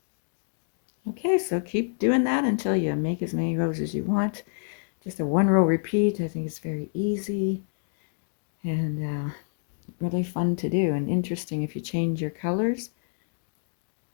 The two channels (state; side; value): silent; right; digital silence